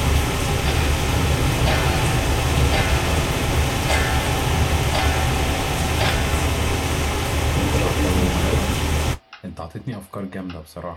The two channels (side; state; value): both; identical; correlation 1.00